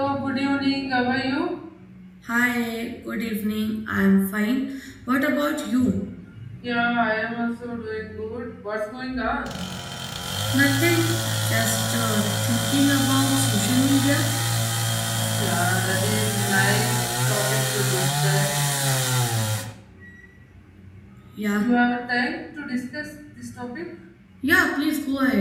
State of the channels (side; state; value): both; identical; correlation 1.00